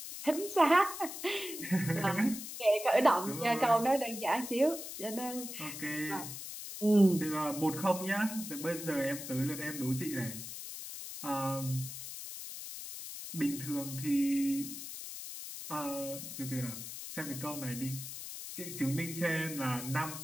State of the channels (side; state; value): left; noise; hiss, 9 dB below the sound